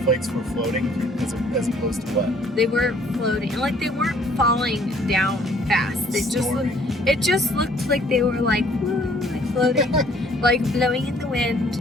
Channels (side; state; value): both; normal; correlation 0.59